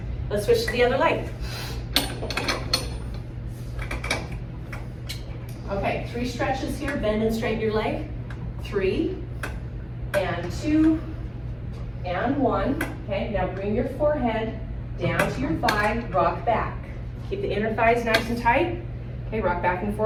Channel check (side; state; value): both; identical; correlation 1.00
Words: Let's switch to the other leg. Okay, 3 stretches here. Bend and straighten your leg. 3, and 2, and 1. Okay, now bring your forehead down to your thigh. Rock back. Keep the inner thighs nice and tight. Okay, rock back and